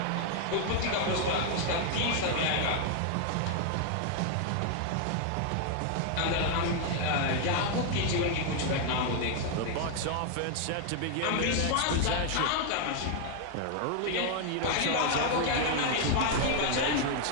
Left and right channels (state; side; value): different; both; correlation 0.00